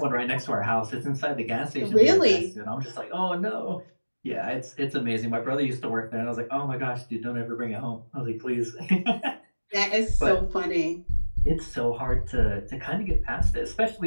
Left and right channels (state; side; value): inverted; both; correlation -1.00